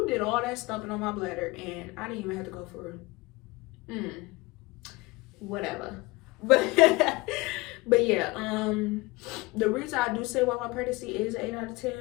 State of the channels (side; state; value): right; quieter; 22.7 dB